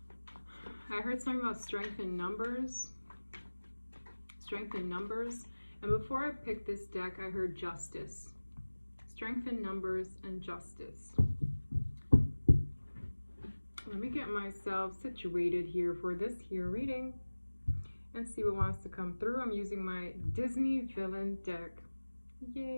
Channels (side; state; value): both; inverted; correlation -1.00